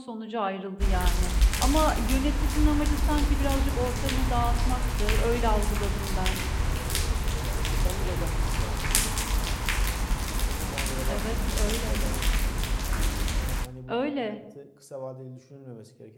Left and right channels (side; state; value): both; identical; correlation 1.00